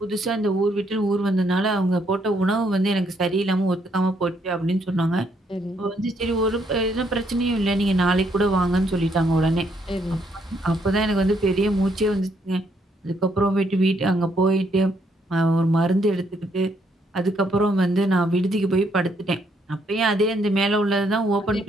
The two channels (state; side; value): normal; both; correlation 0.72